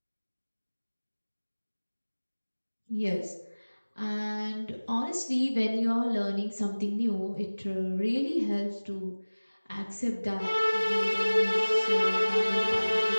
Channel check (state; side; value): inverted; both; correlation -1.00